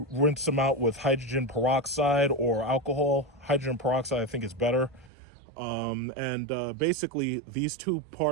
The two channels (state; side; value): drops out; left; at 5.1 s